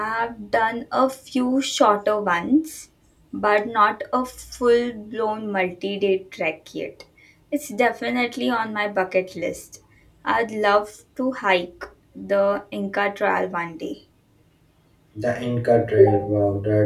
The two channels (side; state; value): both; identical; correlation 1.00